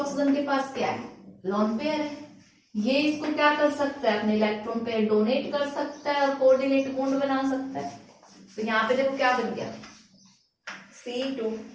के पास क्या है, लोन पेयर है, ये इसको क्या कर सकता है, अपने इलेक्ट्रॉन पेयर डोनेट कर सकता है और कोऑर्डिनेट बॉन्ड बना सकता है। तो यहाँ पे देखो क्या बन गया,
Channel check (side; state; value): both; identical; correlation 1.00